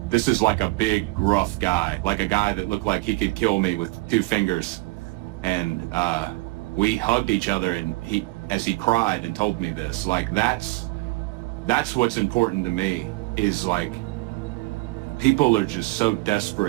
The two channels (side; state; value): left; quieter; 22.6 dB